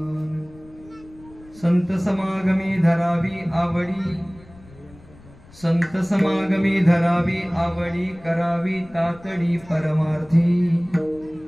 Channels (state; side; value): noise; left; rumble, 23 dB below the sound